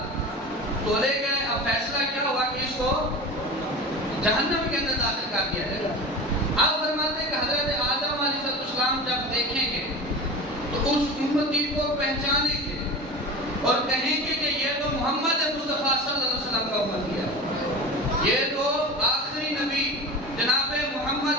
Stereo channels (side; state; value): both; normal; correlation 0.32